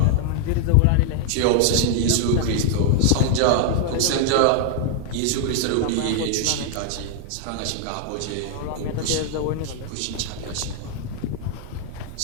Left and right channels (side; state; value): both; different; correlation 0.00